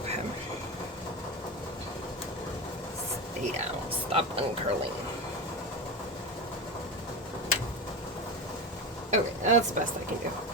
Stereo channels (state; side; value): normal; both; correlation 0.21